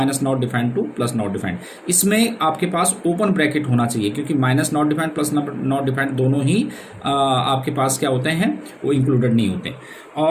-not defined to +not defined. इसमें आपके पास ओपन ब्रैकेट होना चाहिए, क्योंकि -नॉट डिफाइंड +नॉट डिफाइंड दोनों ही आपके पास क्या होते हैं, वो इंक्लूडेड नहीं होते।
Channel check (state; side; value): identical; both; correlation 1.00